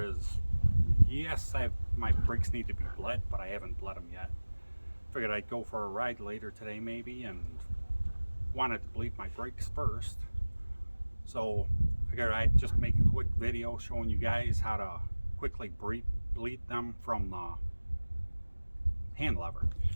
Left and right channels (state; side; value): inverted; both; correlation -1.00